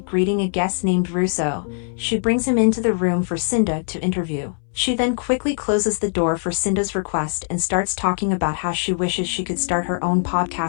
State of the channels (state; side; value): silent; right; 65 dB below the other